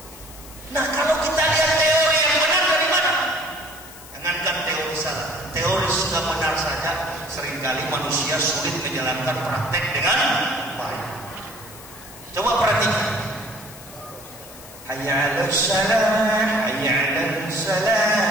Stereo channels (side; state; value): left; noise; hiss, 18 dB below the sound